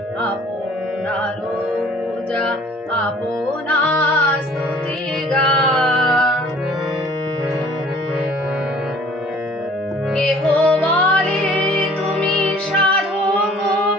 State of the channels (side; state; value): both; normal; correlation 0.52